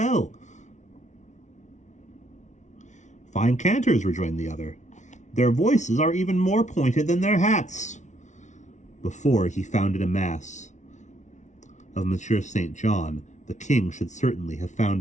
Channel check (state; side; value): late; right; 0.35 ms